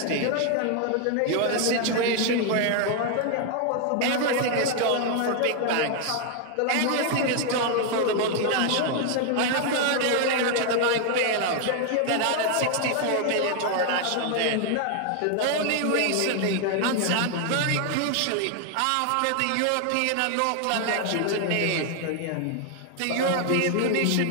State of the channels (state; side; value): different; both; correlation 0.00